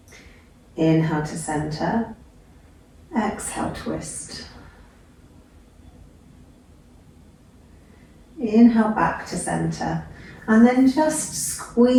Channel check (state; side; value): identical; both; correlation 1.00